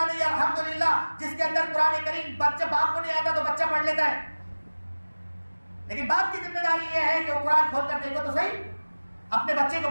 नहीं अल्हम्दुलिल्लाह जिसके अंदर कुरान करीम, बच्चे बाप को नहीं आता तो बच्चा पढ़ लेता है, लेकिन बाप की जिम्मेदारी यह है कि वो कुरान खोल कर देखो तो सही, अपने बच्चे को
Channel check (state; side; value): inverted; both; correlation -1.00